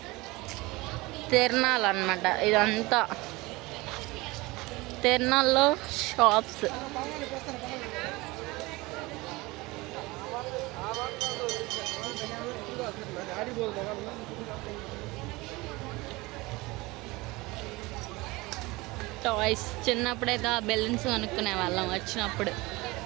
తిరణాలు అన్నమాట ఇదంతా. తిరణాల్లో షాప్స్. టాయ్స్. చిన్నప్పుడైతే ఆ బెలూన్స్ కొనుక్కునే వాళ్ళం వచ్చినప్పుడు.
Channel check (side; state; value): left; quieter; 22.3 dB